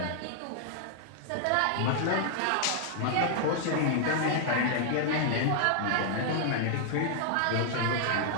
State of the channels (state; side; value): different; both; correlation -0.01